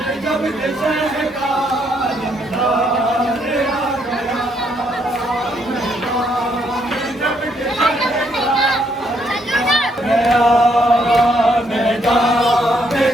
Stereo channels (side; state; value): both; normal; correlation 0.72